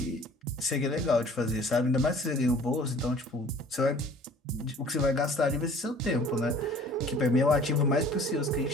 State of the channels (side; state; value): both; normal; correlation 0.50